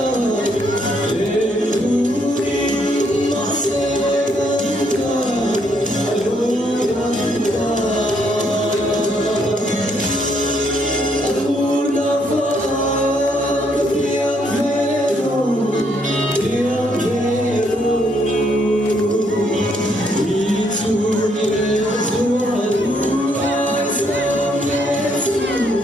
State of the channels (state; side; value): normal; both; correlation 0.72